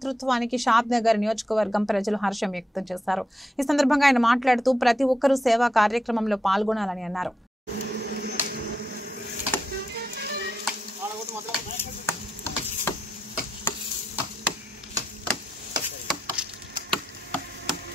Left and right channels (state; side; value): normal; both; correlation 0.85